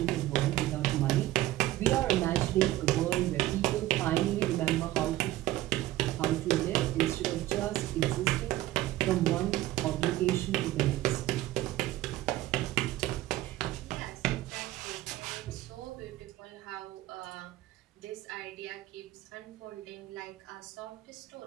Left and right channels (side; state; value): left; quieter; 15.6 dB